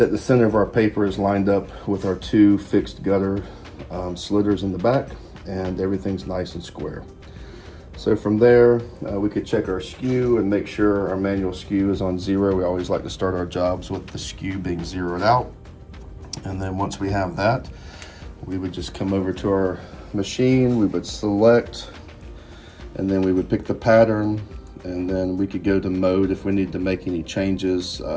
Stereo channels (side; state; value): both; identical; correlation 1.00